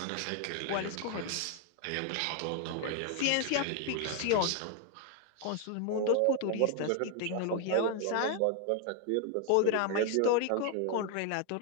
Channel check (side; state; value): both; different; correlation 0.00